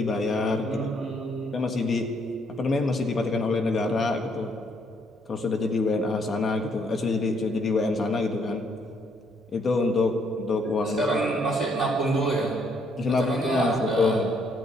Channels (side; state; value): both; normal; correlation 0.70